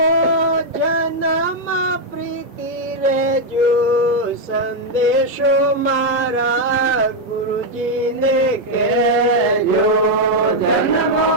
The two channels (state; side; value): normal; both; correlation 0.00